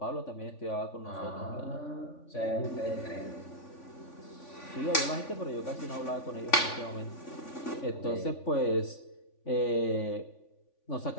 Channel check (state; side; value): late; right; 3.5 ms